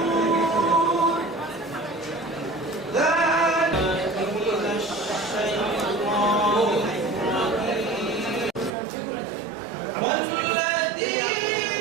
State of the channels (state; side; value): drops out; left; at 8.7 s